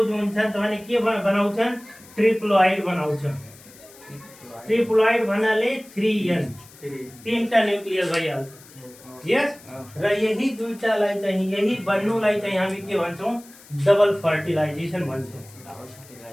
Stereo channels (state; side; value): noise; left; hiss, 22 dB below the sound